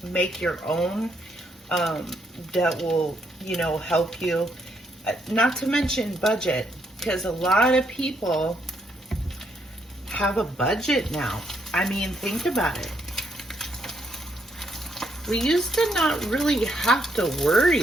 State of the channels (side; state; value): both; normal; correlation 0.75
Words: make your own that will, help you. Not to mention budget, because a lot of people have a budget now. I mean, think about it. We used to not really have to